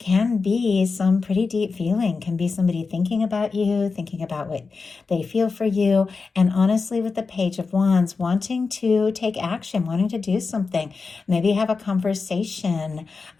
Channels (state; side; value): quieter; right; 4.5 dB